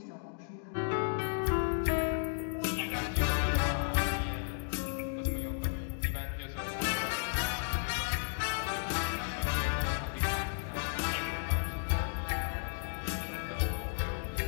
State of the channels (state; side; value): silent; right; digital silence